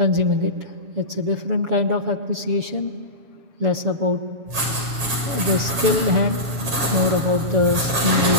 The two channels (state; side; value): late; left; 7.3 ms